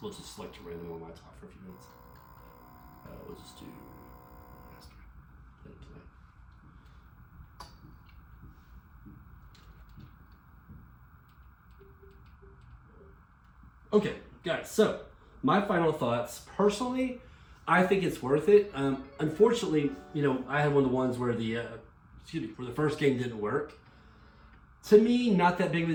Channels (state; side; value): identical; both; correlation 1.00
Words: select a random one while I talk for a few minutes. We'll just do master. Let it play. Okay, guys, so my final thoughts. Personally, I think it's worth it. Unfortunately, you know, I had one of the ones where the first game didn't work. To me, not that big of a